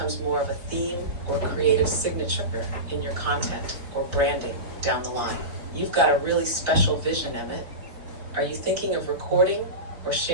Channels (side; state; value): left; late; 3.9 ms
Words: more of a theme or creative signature in your content or branding down the line. You've got a really special vision, Emmett. Are you thinking of recording or